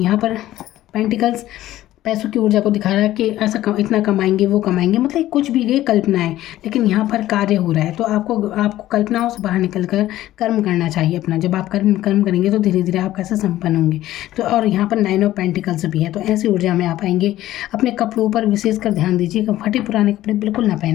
पर पेंटिकल्स पैसों की ऊर्जा को दिखा रहा है कि ऐसा इतना कमाएंगे, वो कमाएंगे, मतलब कुछ भी ये कल्पनाएं, लेकिन यहाँ पर कार्य हो रहा है। तो आपको कल्पनाओं से बाहर निकल कर कर्म करना चाहिए अपना। जब आप कर्म करेंगे तो धीरे धीरे आप कैसे संपन्न होंगे। तो और यहाँ पर 9 ऑफ पेंटिकल्स भी है, तो ऐसी ऊर्जा में आप आएंगे। अपने कपड़ों पर विशेषकर ध्यान दीजिए कि फटे पुराने कपड़े बिल्कुल ना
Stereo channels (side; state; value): right; quieter; 14.5 dB